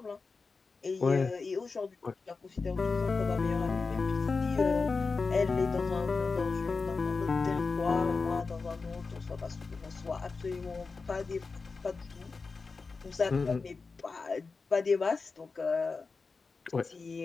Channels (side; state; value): right; quieter; 4.4 dB